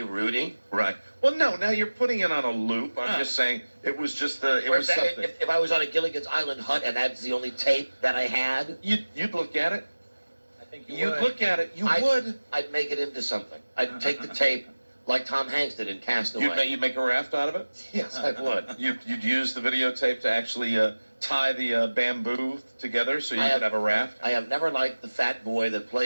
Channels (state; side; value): inverted; both; correlation -1.00